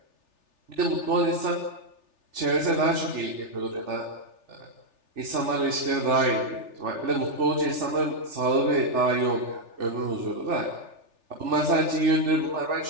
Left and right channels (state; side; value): late; left; 3.4 ms